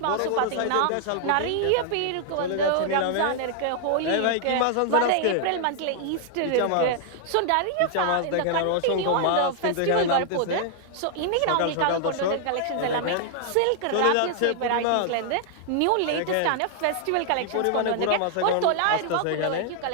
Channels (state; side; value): different; both; correlation 0.00